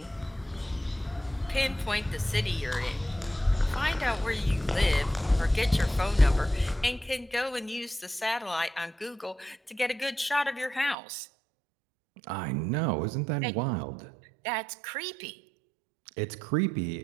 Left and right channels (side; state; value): left; drops out; at 11.0 s